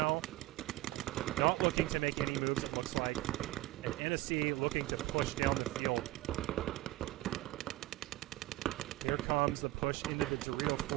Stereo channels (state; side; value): quieter; left; 17.8 dB